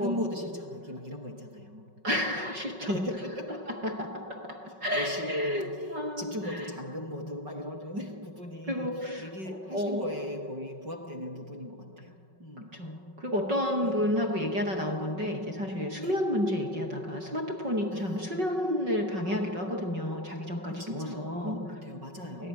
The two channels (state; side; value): late; left; 5.3 ms